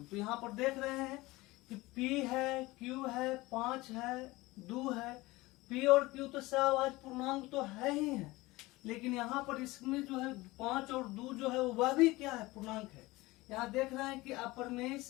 तो यहाँ पर देख रहे हैं कि p है, q है, 5 है, 2 है, p और q तो सहभाज्य पूर्णांक तो है ही है, लेकिन यहाँ पर इसमें जो है 5 और 2 जो है वह भी क्या है, पूर्णांक है। यहाँ देख रहे हैं कि अपरिमेय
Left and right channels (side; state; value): right; quieter; 20.6 dB